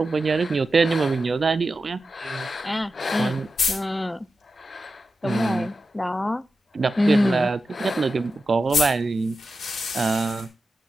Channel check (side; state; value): both; normal; correlation 0.91